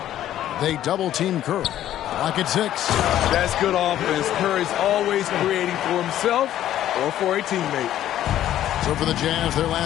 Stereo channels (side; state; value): right; quieter; 12.2 dB